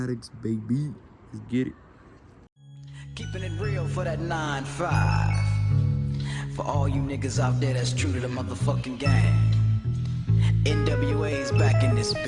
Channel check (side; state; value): both; identical; correlation 1.00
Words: baby. Let's get it. Keeping it real for that 9-5. For all you niggas out there that's true to the motherfucking gang. NWA's back in this